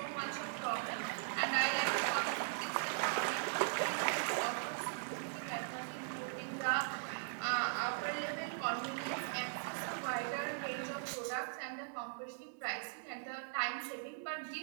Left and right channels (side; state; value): left; silent; 51 dB below the other